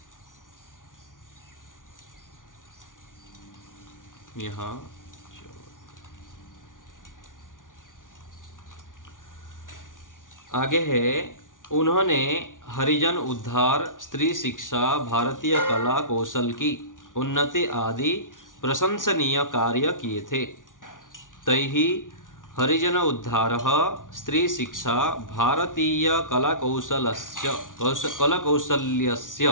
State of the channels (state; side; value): late; right; 0.88 ms